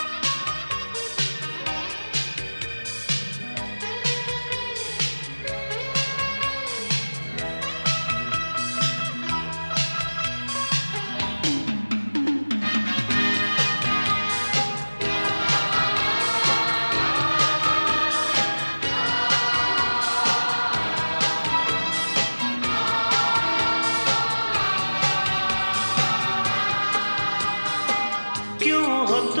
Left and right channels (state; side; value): inverted; both; correlation -1.00